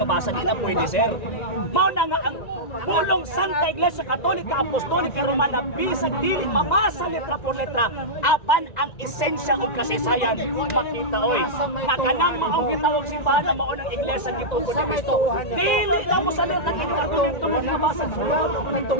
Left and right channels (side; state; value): right; late; 1.9 ms